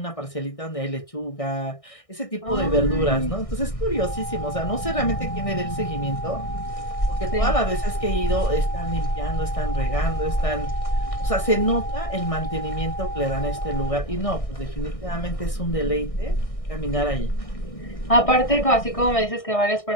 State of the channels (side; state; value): right; late; 1.6 ms